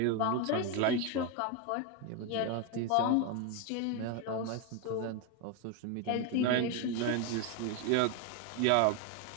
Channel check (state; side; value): different; both; correlation 0.01